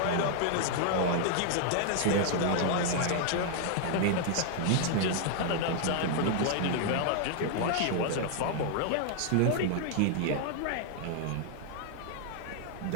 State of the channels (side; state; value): both; different; correlation 0.00